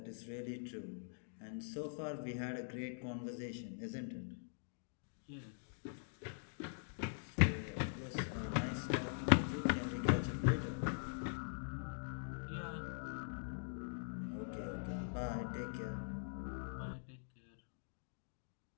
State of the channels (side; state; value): right; silent; digital silence